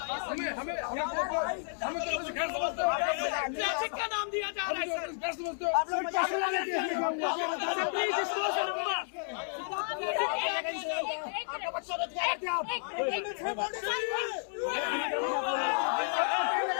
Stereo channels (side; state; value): right; silent; 57 dB below the other